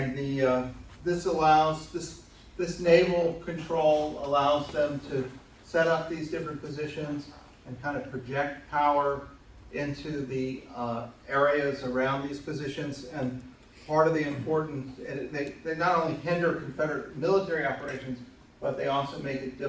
this naval control allows them to set up these different positions and kind of project power into the areas around these positions. And part of the importance, they not only hinder Confederate military operations, but they also make it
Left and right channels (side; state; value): both; identical; correlation 1.00